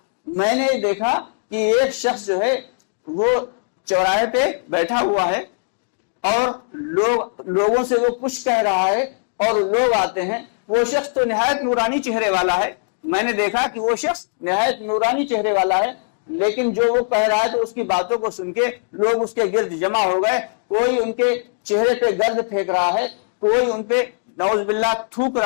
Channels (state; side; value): silent; right; digital silence